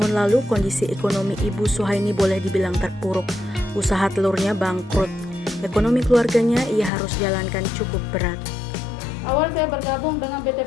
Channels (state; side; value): drops out; right; at 6.9 s